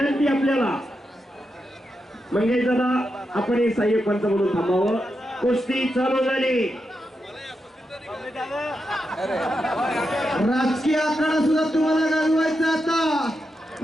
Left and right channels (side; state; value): both; normal; correlation 0.86